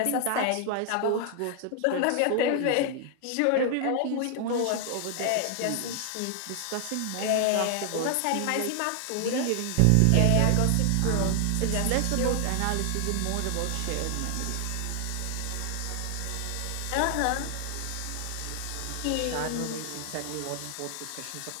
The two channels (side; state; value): both; different; correlation 0.00